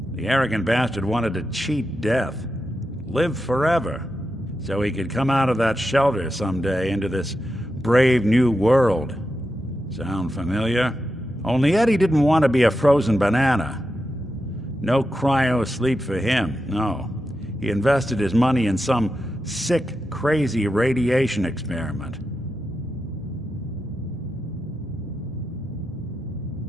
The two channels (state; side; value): normal; both; correlation 0.88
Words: The arrogant bastard wanted to cheat death, live forever, so he could come out of that shelter someday into this brave new world. Sound familiar? Only Eddie didn't want to be a frozen banana. No cryo sleep for him, no. He invested his money in some sick, crazy radiation experiment.